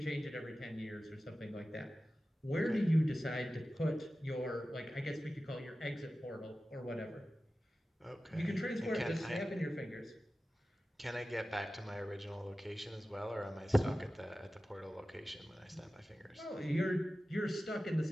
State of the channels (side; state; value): both; normal; correlation 0.95